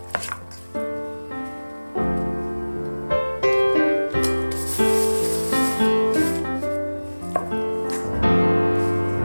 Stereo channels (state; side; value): inverted; both; correlation -1.00